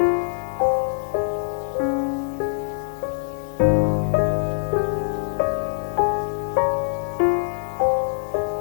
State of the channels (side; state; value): right; silent; digital silence